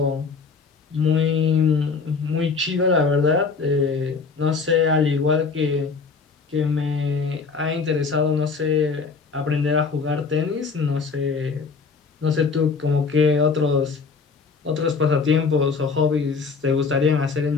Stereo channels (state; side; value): quieter; right; 4.9 dB